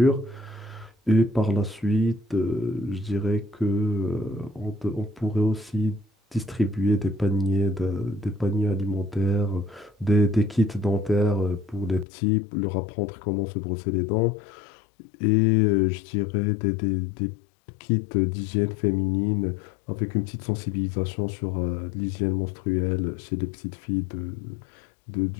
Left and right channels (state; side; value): drops out; right; at 12.1 s